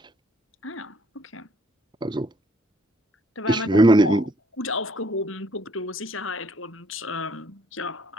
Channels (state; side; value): normal; both; correlation 0.66